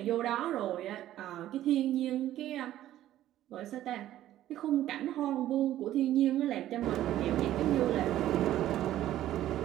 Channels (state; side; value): quieter; left; 13.2 dB